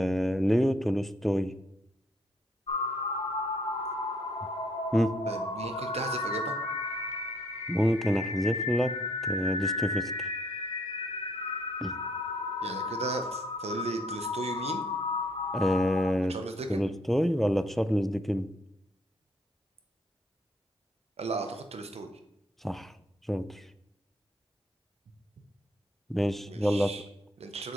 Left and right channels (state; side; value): normal; both; correlation 0.66